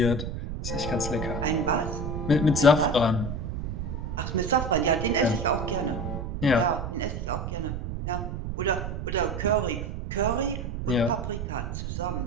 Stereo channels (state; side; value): noise; right; rumble, 4 dB below the sound